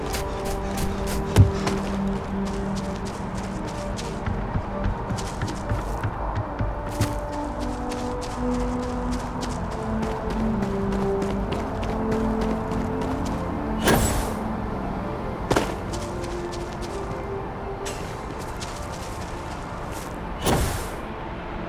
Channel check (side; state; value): both; identical; correlation 1.00